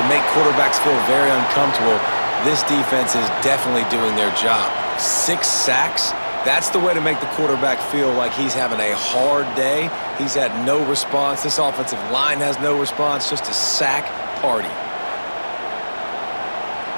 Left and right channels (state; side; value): inverted; both; correlation -1.00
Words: make quarterbacks feel very uncomfortable, this defense is definitely doing their job. 6 sacks, that's the way to make the quarterback feel like he's having a hard day. He's had no response. This offensive line has no response, just a sack party.